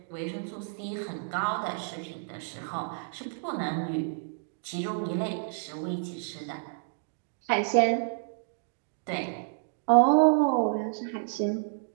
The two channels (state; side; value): silent; left; digital silence